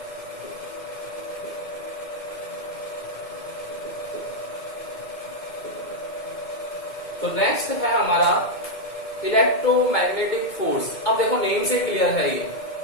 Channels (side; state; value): right; late; 2.1 ms